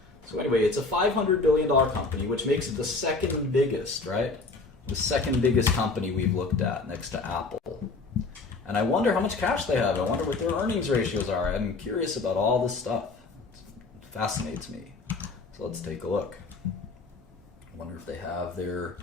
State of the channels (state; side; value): quieter; right; 3.8 dB